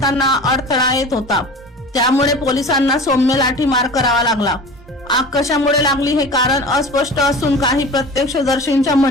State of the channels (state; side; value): normal; both; correlation 0.37